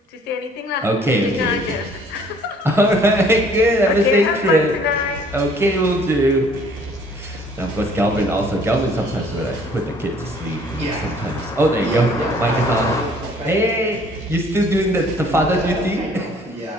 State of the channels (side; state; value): both; normal; correlation 0.58